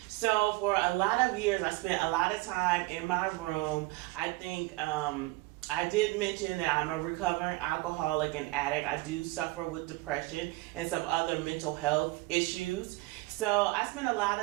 So for a lot of years, I spent a lot of time in my room. I think I did mention that I'm a recovering alcoholic and addict. I do suffer with depression and some other mental health issues. So I spend a lot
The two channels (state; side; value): quieter; left; 21.7 dB